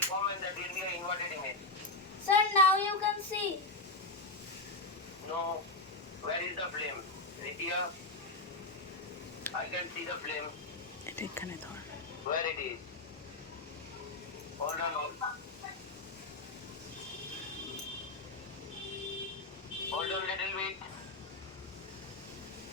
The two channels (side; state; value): right; quieter; 3.0 dB